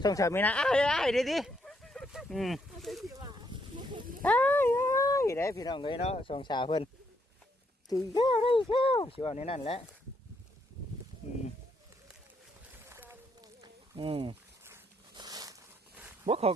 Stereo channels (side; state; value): both; normal; correlation 0.74